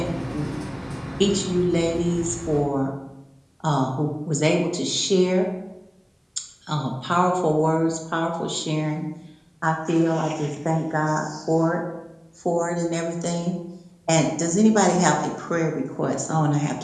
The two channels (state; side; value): identical; both; correlation 1.00